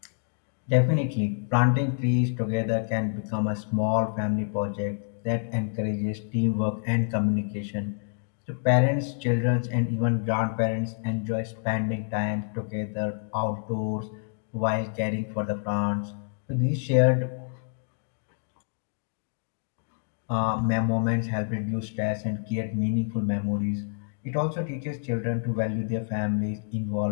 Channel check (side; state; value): right; silent; digital silence